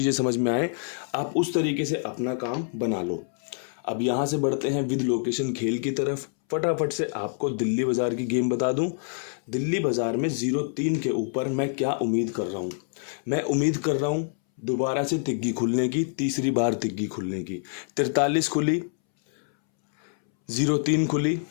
समझ में आए, आप उस तरीके से अपना काम बना लो। अब यहाँ से बढ़ते हैं विद लोकेशन खेल की तरफ। फटाफट से आपको दिल्ली बाज़ार की गेम बता दूं। दिल्ली बाज़ार में 0-3 के ऊपर मैं क्या उम्मीद कर रहा हूँ, मैं उम्मीद कर रहा हूँ दोबारा से तिग्गी खुलने की, तीसरी बार तिग्गी खुलने की। 43 खुली, 0-3 खुली,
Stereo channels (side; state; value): right; silent; 61 dB below the other